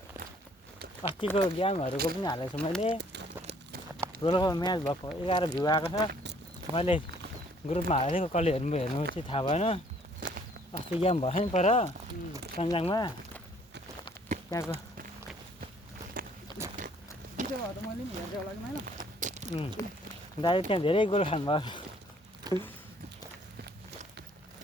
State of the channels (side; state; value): both; normal; correlation 0.61